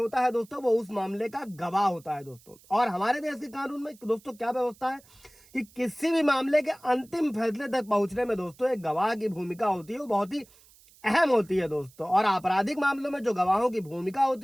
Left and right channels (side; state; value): right; noise; hiss, 27 dB below the sound